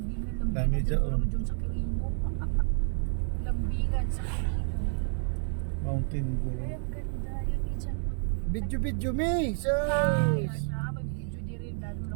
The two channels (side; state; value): left; silent; 58 dB below the other